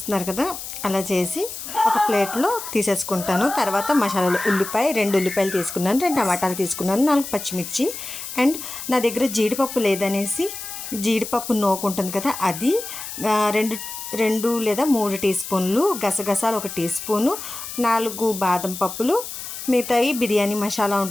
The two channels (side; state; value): left; noise; hiss, 9 dB below the sound